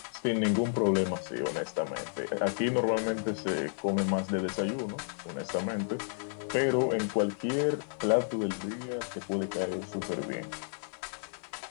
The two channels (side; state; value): right; silent; digital silence